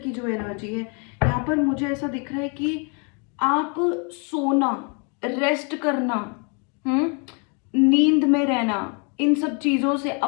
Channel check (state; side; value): quieter; right; 36.1 dB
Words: जो एनर्जी है, यहाँ पर मुझे ऐसा दिख रहा है कि आप सोना, रेस्ट करना, नींद में रहना, इन सब चीजों से